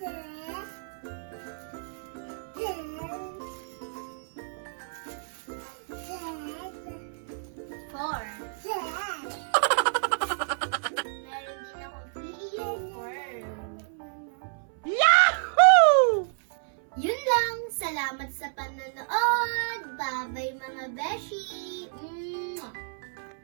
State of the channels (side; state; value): left; silent; 58 dB below the other